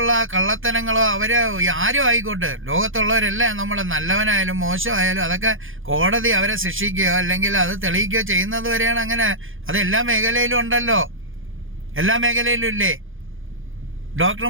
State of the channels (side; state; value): left; late; 0.58 ms